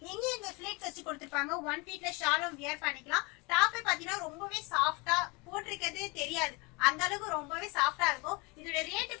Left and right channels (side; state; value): right; quieter; 27.7 dB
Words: இங்க இந்த ஃபிளிட்ஸ் வச்சு கொடுத்திருப்பாங்க. 1 ஃபீட்ல ஷாலும் வியர் பண்ணிக்கலாம். டாப் பாத்தீங்கன்னா ரொம்பவே சாஃப்டா போட்டிருக்கிறதே தெரியாது. அந்த அளவுக்கு ரொம்பவே சாஃப்டா இருக்கும். இதோட ரேட்